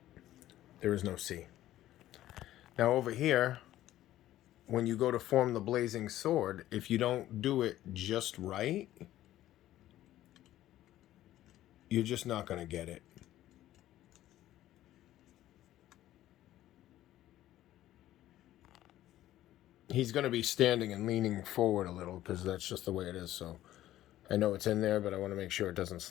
There is no C. Now over here, when you go to form the blazing sword, if you don't do it just right, you're just not going to get it. He's going to be standing and leaning forward a little because that's just the way it is. So I know it's in there, but I want to make sure it doesn't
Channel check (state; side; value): quieter; right; 13.8 dB